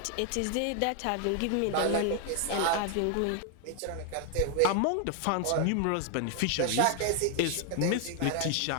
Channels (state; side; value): different; both; correlation 0.00